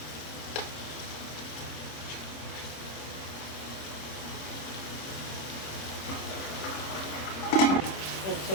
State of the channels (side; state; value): right; late; 26 ms